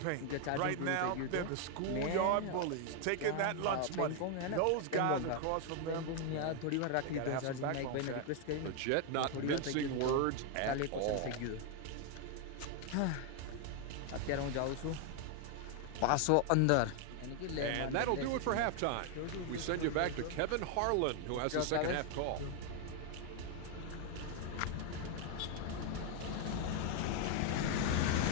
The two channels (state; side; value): different; both; correlation 0.01